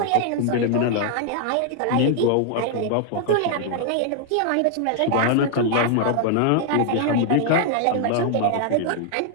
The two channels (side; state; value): both; different; correlation 0.00